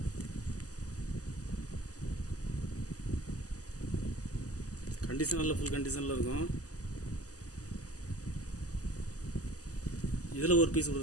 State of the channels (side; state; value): right; late; 0.67 ms